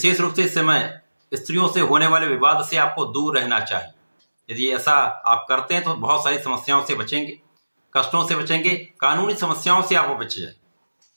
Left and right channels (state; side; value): inverted; both; correlation -1.00